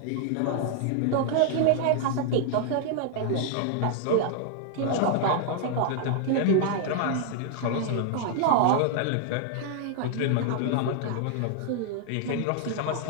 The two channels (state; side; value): different; both; correlation -0.01